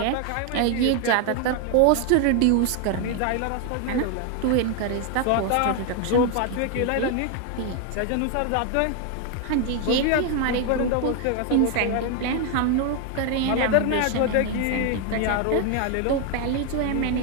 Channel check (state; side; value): different; both; correlation 0.01